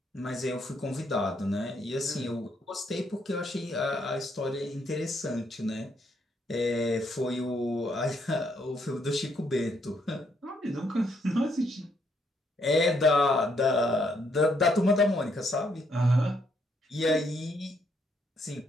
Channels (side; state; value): both; normal; correlation 0.73